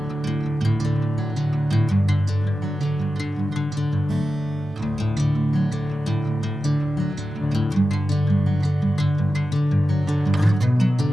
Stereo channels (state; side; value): normal; both; correlation 0.92